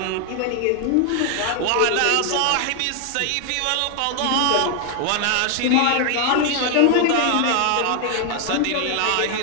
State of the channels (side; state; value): both; different; correlation 0.00